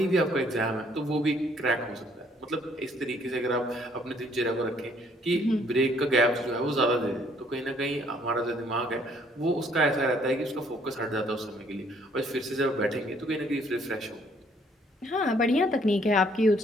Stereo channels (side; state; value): both; normal; correlation 0.64